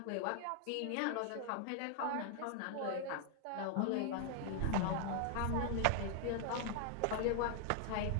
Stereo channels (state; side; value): different; both; correlation 0.00